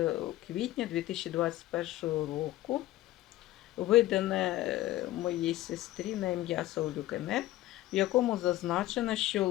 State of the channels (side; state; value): right; quieter; 15.7 dB